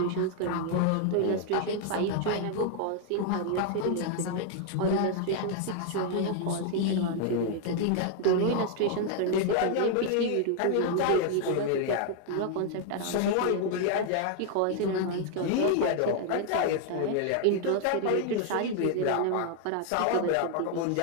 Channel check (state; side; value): different; both; correlation 0.00